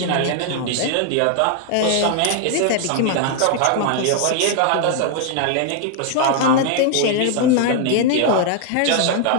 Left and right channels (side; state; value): both; different; correlation 0.00